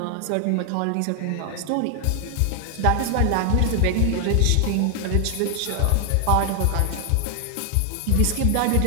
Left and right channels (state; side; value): different; both; correlation 0.00